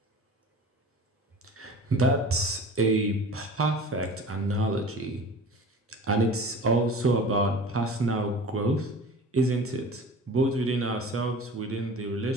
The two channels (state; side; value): normal; both; correlation 0.39